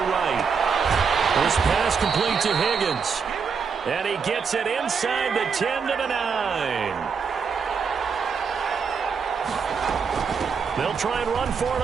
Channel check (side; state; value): left; quieter; 5.9 dB